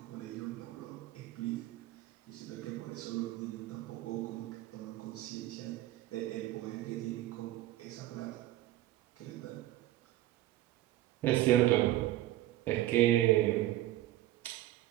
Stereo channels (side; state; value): left; quieter; 15.1 dB